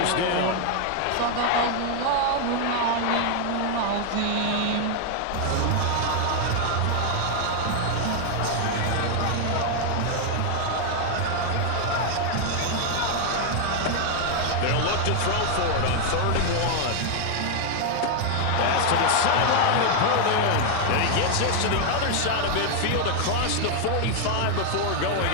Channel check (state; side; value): different; both; correlation 0.00